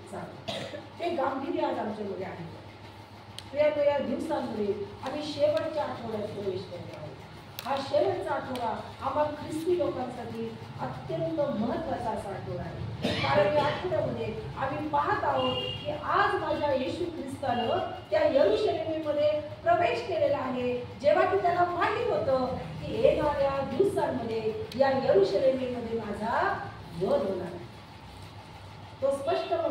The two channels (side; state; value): both; identical; correlation 1.00